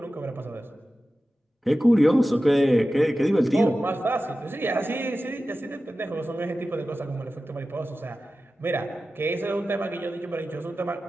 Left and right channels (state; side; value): normal; both; correlation 0.94